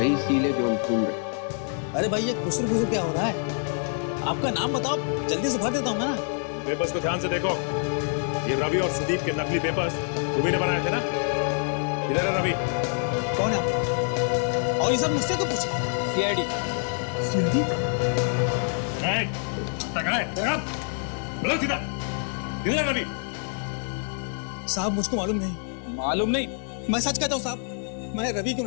सील है जो हम ढूंढ रहे हैं। अरे भाई, ये खुसर खुसर क्या हो रहा है? आपका नाम बताओ, जल्दी से भर देता हूँ मैं ना। पेपर्स को ध्यान से देखो। ये रवि और सुदीप के नकली पेपर्स तुम्ही ने बनाए थे ना? इधर है रवि। कौन है आप लोग? और ये सब मुझसे क्यों पूछ रहे हैं? सीआईडी। सीआईडी? बोलो सीधा, किधर है रवि? साहब मुझको मालूम नहीं। मालूम नहीं? मैं सच कहता हूँ साहब, मैं रवि को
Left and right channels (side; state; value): right; silent; 56 dB below the other